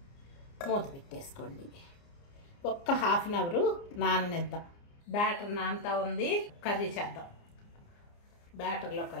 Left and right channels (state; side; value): late; right; 29 ms